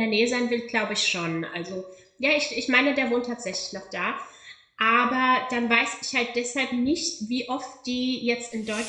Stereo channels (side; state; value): both; identical; correlation 1.00